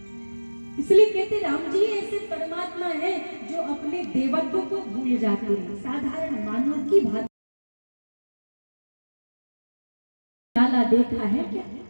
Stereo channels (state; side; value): inverted; both; correlation -1.00